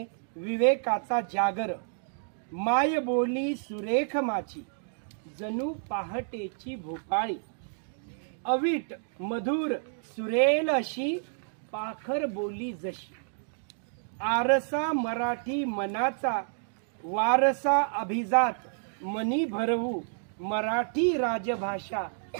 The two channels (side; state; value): left; silent; digital silence